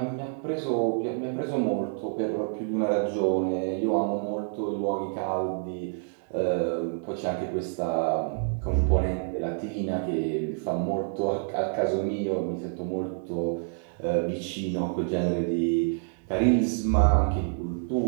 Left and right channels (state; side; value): silent; left; digital silence